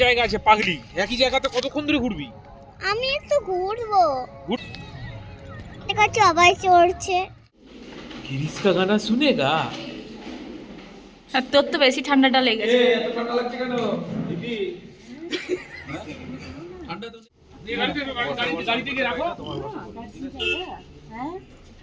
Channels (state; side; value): identical; both; correlation 1.00